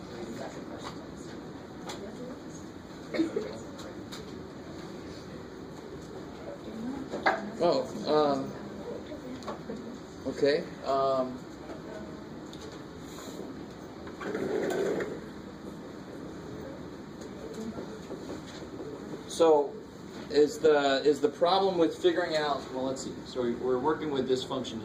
Oh, okay. So, is the problem with figuring out? Well, let's see. So we're working with this function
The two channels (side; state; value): both; identical; correlation 1.00